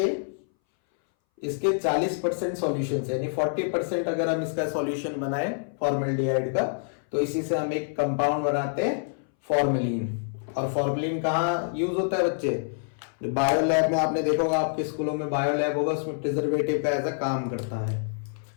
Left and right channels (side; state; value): right; silent; 60 dB below the other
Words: इसके 40% सॉल्यूशन, यानी 40% अगर हम इसका सॉल्यूशन बनाए फॉर्मल्डिहाइड का, तो इसी से हम एक कंपाउंड बनाते हैं फॉर्मेलिन। और फॉर्मेलिन कहाँ यूज होता है बच्चे, बायो लैब में आपने देखा होगा, आपके स्कूलों में बायो लैब होगा, उसमें प्रिजर्वेटिव का ऐसा काम करता है।